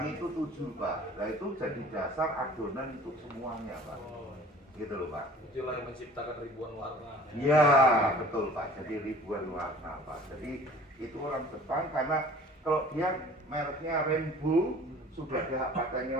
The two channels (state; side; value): normal; both; correlation 0.48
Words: itu tujuh Pak. Nah itu jadi dasar adonan untuk semuanya Pak. Oh, Gitu loh Pak. itulah yang menciptakan ribuan warna. Iya betul Pak. Jadi ribuan warna Pak. Jadi itu orang Jepang karena kalau dia mereknya Rainbow sudah ada hak patennya